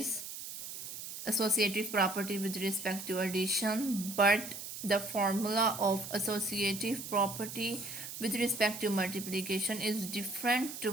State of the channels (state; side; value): noise; right; hiss, 9 dB below the sound